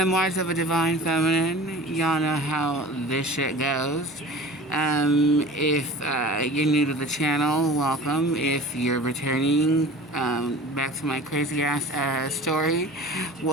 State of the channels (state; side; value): normal; both; correlation 0.39